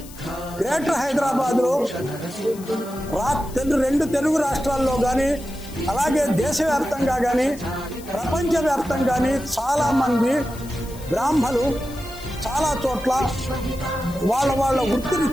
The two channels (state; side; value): noise; left; hiss, 19 dB below the sound